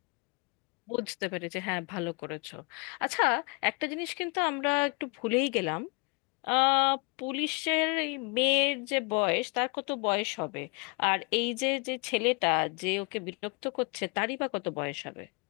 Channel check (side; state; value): right; quieter; 32.2 dB